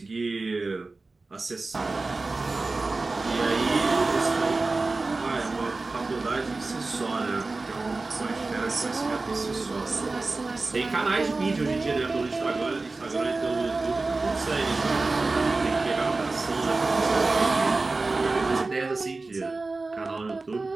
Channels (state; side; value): quieter; left; 3.5 dB